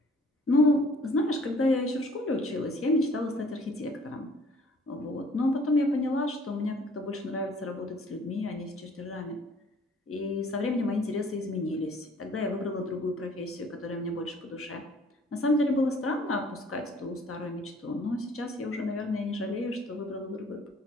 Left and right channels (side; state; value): both; normal; correlation 0.55